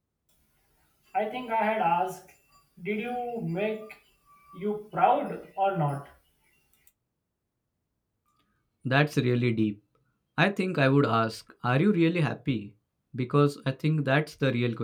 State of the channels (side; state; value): both; identical; correlation 1.00